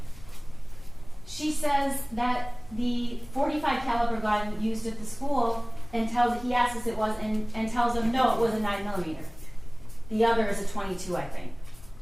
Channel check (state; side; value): noise; left; rumble, 20 dB below the sound